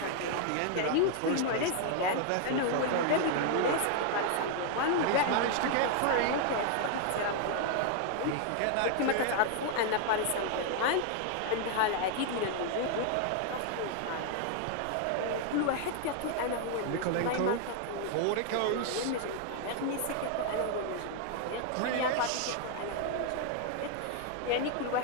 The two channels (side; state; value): both; different; correlation 0.00